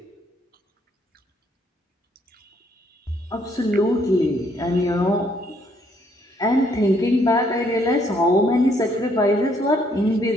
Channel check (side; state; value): both; normal; correlation 0.69